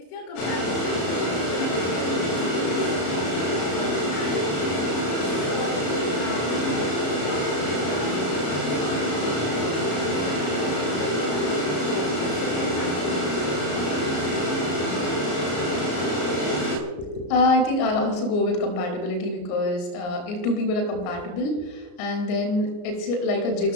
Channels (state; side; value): late; right; 33 ms